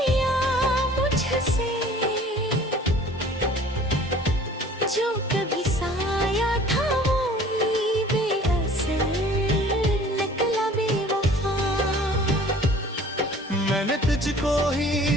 मुझसे जो कभी साया था वो ही बेअसर निकला बेवफा मैंने तुझको ही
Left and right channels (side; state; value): both; normal; correlation 0.49